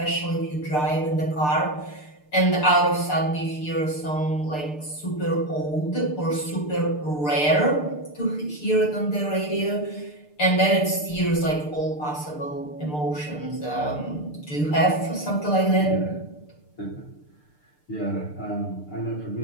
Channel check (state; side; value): late; right; 6.7 ms